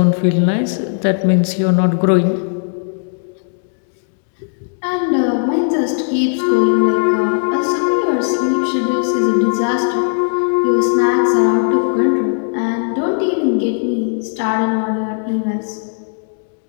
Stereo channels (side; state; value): right; silent; 68 dB below the other